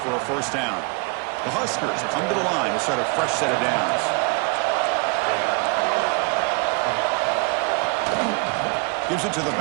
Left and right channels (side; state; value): left; quieter; 31.6 dB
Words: for a first down. The Huskers come to the line to start a fresh set of downs. Gives it to the